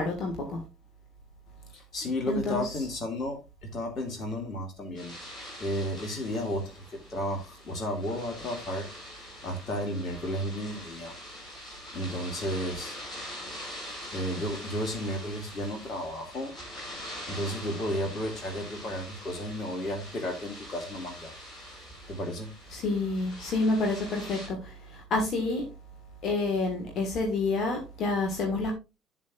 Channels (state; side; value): normal; both; correlation 0.48